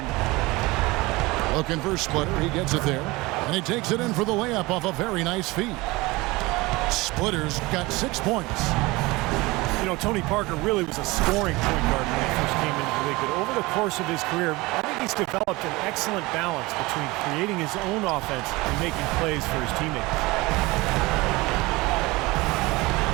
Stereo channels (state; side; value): quieter; left; 22.1 dB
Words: Looking for Splitter. He gets it there, and he takes it in for the layup off a very nice feed. Splitter's got 6 points. You know, Tony Parker really was a scoring point guard when he first came into the league, but over the course of his career, I think he's developed an excellent balance between creating his own offense and making plays for his teammates.